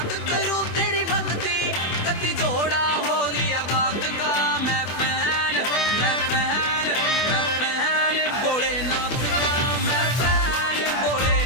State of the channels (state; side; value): late; right; 24 ms